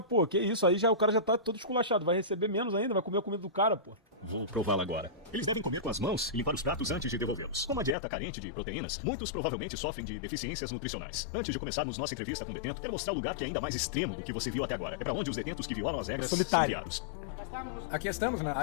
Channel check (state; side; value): drops out; right; at 8.0 s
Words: que isso? Aí já o cara já tá todo esculachado. Vai receber menos ainda, vai comer a comida do cara, pô. Vou prová-la agora. Eles devem comer com as mãos e limpar os pratos antes de devolvê-los. Com uma dieta carente de proteínas, muitos provavelmente sofrem de deficiências nutricionais. Antes de começarmos nossa entrevista com o detento, quero mostrar o lugar que é ainda mais extremo do que você viu até agora. É pra onde os detentos que violam as regras são Solitário. enviados. Aqui estamos na